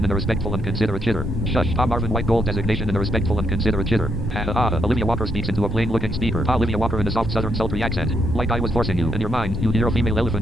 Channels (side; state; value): both; normal; correlation 0.77